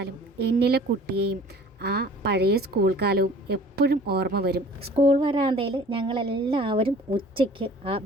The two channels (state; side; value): normal; both; correlation 0.48